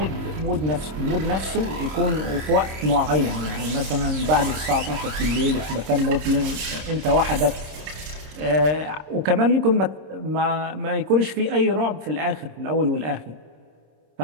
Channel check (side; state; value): left; late; 26 ms